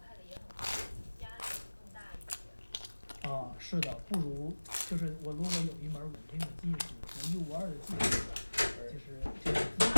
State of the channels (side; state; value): both; inverted; correlation -1.00